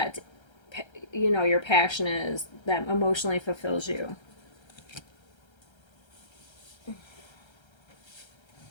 your passion is that emotionally fulfills you.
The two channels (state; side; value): late; right; 1.3 ms